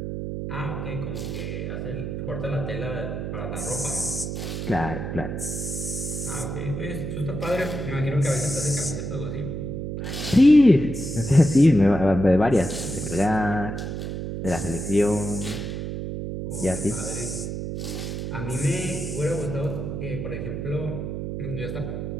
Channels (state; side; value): noise; right; hum, 4 dB below the sound